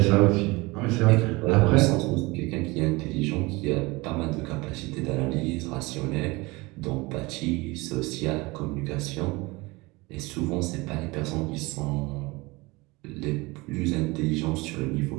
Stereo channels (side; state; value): left; quieter; 23.5 dB